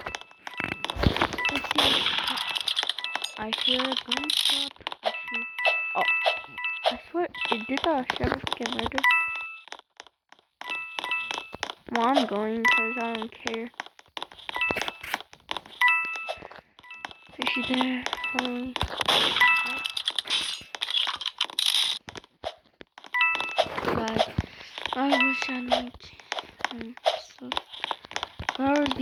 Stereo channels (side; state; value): both; identical; correlation 1.00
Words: the sheriff get murdered? Well, I'm going because I don't care. Is she there? Holy. God, I wish I knew. So, whoever's